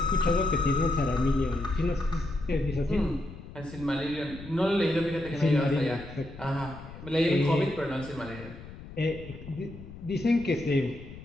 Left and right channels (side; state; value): left; noise; rumble, 15 dB below the sound